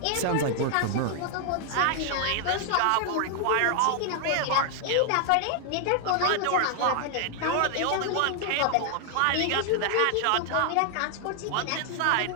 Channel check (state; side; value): different; both; correlation 0.00